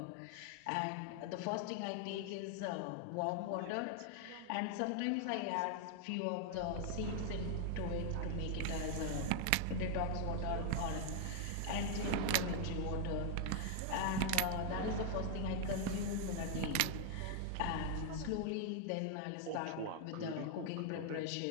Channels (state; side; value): different; both; correlation 0.00